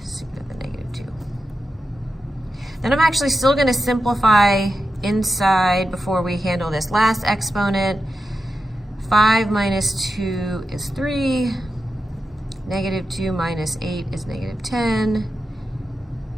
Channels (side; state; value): both; normal; correlation 0.90